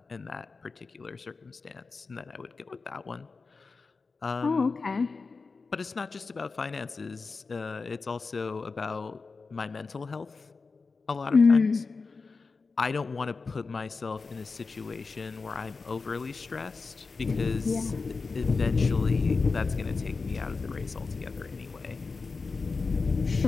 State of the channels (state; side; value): quieter; right; 4.3 dB